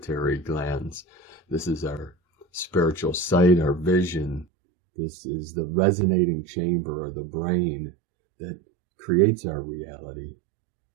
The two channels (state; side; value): drops out; left; at 4.5 s